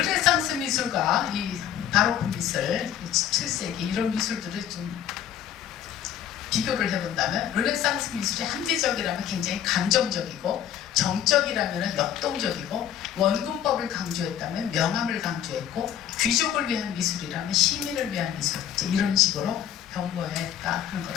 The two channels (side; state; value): right; quieter; 10.2 dB